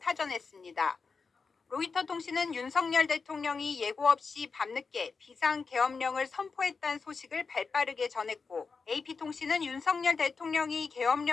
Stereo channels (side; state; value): right; quieter; 4.9 dB